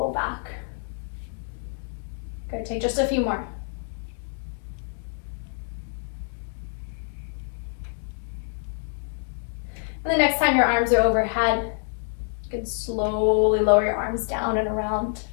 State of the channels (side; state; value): right; silent; 60 dB below the other